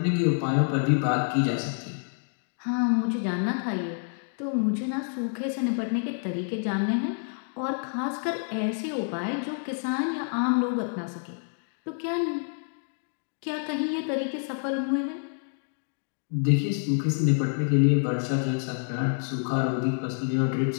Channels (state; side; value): silent; right; 59 dB below the other